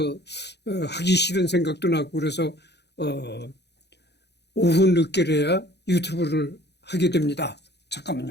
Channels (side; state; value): right; late; 0.49 ms